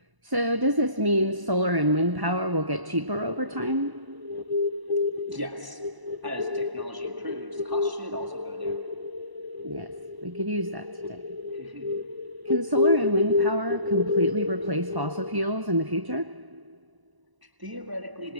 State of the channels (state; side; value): late; left; 1.0 ms